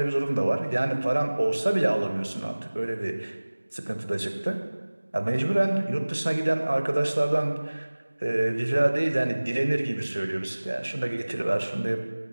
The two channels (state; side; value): inverted; both; correlation -1.00